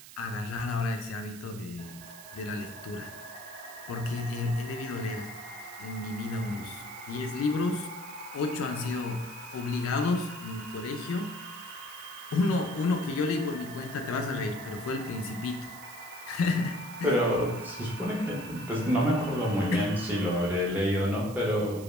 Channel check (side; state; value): right; noise; hiss, 16 dB below the sound